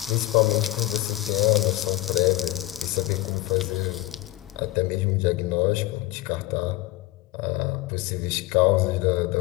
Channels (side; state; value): right; quieter; 17.5 dB